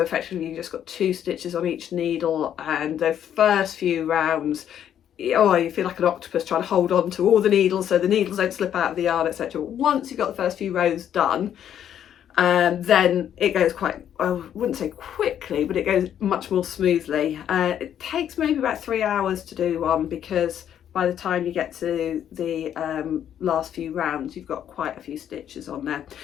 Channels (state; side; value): quieter; right; 9.9 dB